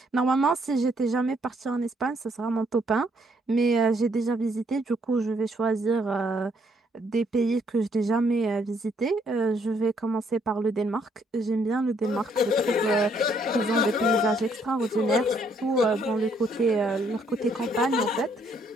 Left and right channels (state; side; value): normal; both; correlation 0.69